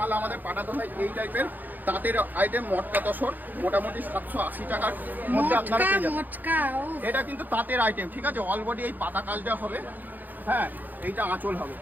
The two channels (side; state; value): left; late; 0.085 ms